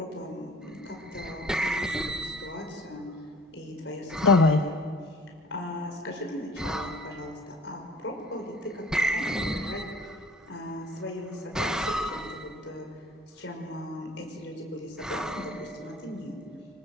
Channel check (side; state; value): both; normal; correlation 0.49